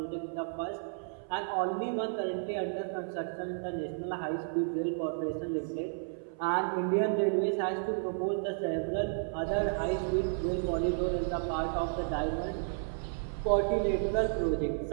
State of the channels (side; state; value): left; silent; 56 dB below the other